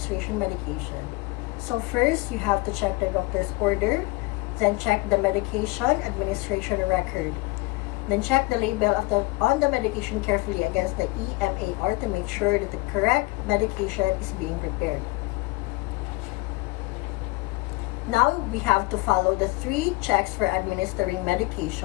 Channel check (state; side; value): quieter; right; 23.1 dB